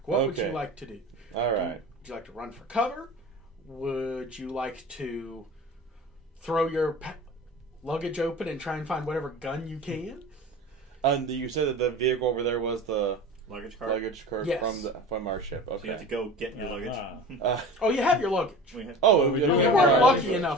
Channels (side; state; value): both; normal; correlation 0.36